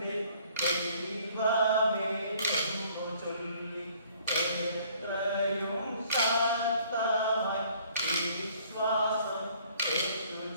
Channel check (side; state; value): both; inverted; correlation -0.59